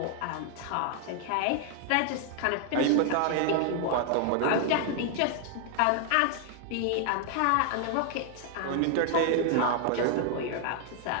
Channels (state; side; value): different; both; correlation 0.00